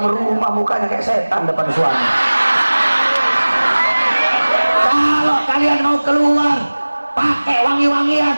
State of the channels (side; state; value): both; inverted; correlation -1.00